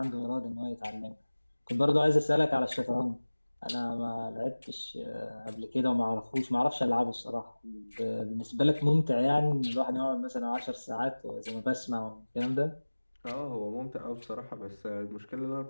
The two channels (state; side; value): inverted; both; correlation -1.00